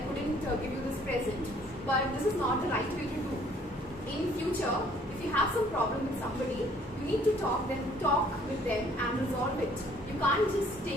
couldn't give you this present, but this is not the right way to do. In future, if you have some problem with somebody, you need to talk with them and resolve it. You can't just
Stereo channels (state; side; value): normal; both; correlation 0.59